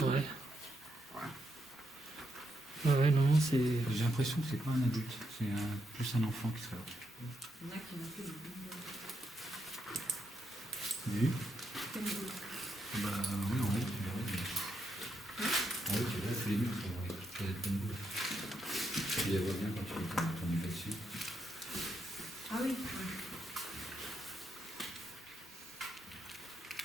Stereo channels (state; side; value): normal; both; correlation 0.80